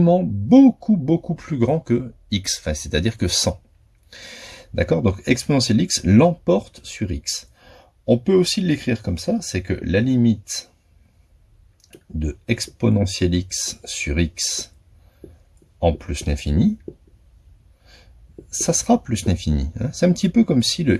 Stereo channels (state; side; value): identical; both; correlation 1.00